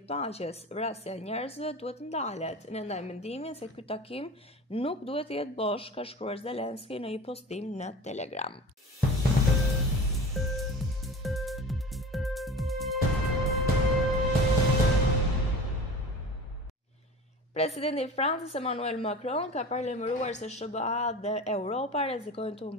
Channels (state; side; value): normal; both; correlation 0.36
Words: paqes. Vrasja e njerëzve duhet të ndalet. Ne ndaj mendimin se ky takim nuk duhet të jetë bosh, ka shkruar Zelensky në një postim në Telegram. Presidenti i Francës Emmanuel Macron ka paralajmëruar se SBA dhe Europa rrezikojnë të